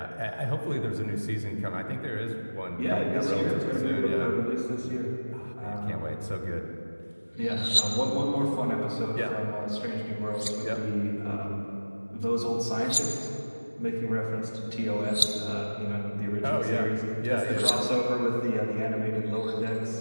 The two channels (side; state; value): both; inverted; correlation -1.00